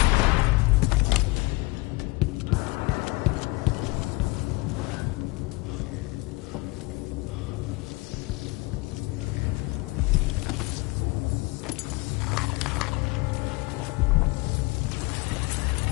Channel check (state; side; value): quieter; right; 23.9 dB